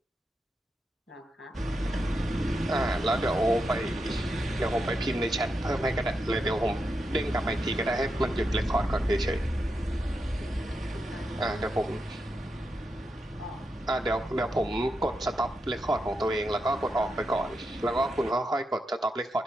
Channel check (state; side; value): normal; both; correlation 0.86